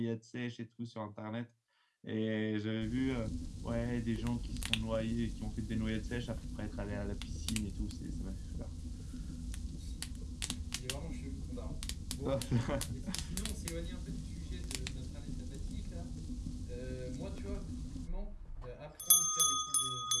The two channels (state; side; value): identical; both; correlation 1.00